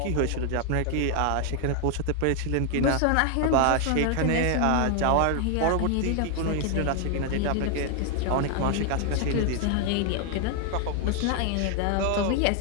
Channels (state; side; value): different; both; correlation 0.00